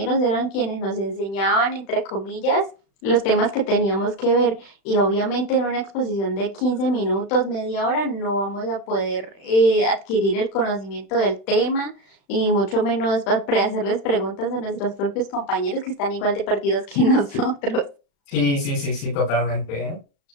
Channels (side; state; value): right; late; 36 ms